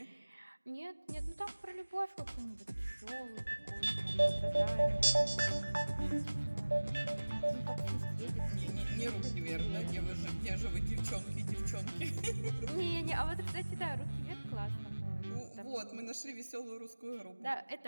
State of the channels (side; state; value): both; inverted; correlation -1.00